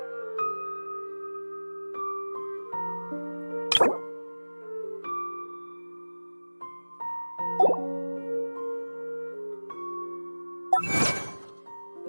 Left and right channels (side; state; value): both; inverted; correlation -1.00